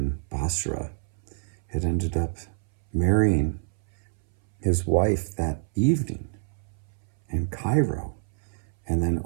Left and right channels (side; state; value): left; silent; 60 dB below the other